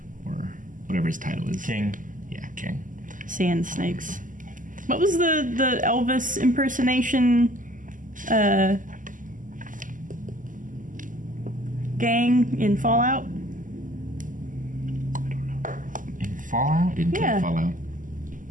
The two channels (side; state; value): left; late; 0.38 ms